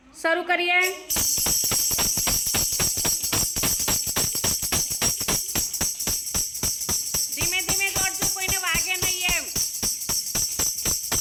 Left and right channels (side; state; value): both; identical; correlation 1.00